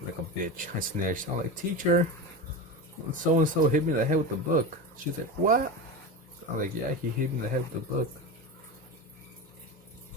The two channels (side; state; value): both; normal; correlation 0.23